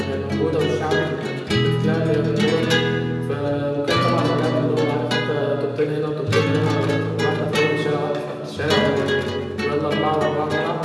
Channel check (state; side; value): identical; both; correlation 1.00